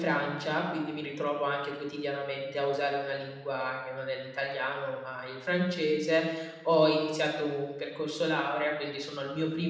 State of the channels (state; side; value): identical; both; correlation 1.00